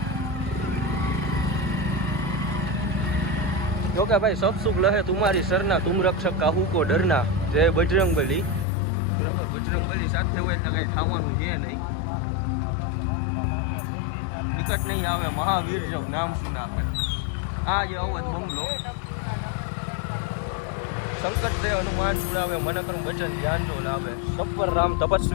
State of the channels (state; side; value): drops out; right; at 8.7 s